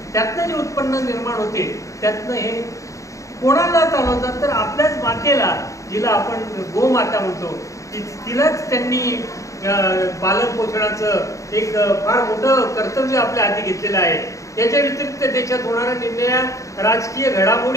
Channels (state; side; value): late; right; 0.15 ms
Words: त्यातनं जे उत्पन्न निर्माण होते त्यातनं हे कोणाला चालवतात तर आपल्याच मातेला, जिला आपण गोमाता म्हणतो, तिलाच त्यांनी पालन पोषणाचं एक फार मोठं कर्तव्य आपल्या हाती घेतलेलं आहे. याच्या व्यतिरिक्त देशात होणाऱ्या निर्णया राजकीय